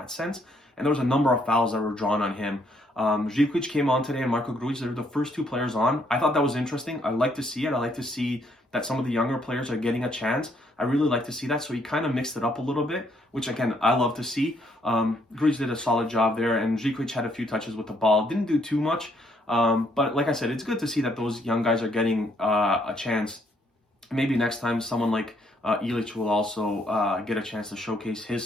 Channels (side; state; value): both; normal; correlation 0.70